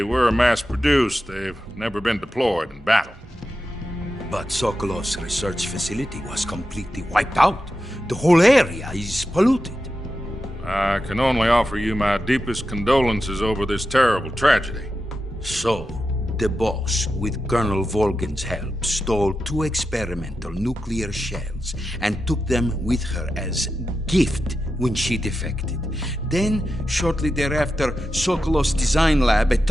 were mass-produced, they've never been deployed in battle. But Sokolov's research facility was completely wiped out. The whole area is polluted. I can only offer you my deepest condolences over this terrible tragedy. So, the Boss, with Colonel Volgin's help, stole 2 experimental nuclear shells and took them with her as gift when she defected. Then, shortly thereafter, Sokolov's design lab, a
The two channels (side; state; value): both; normal; correlation 0.90